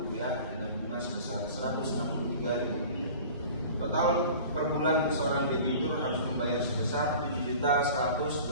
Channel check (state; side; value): inverted; both; correlation -0.41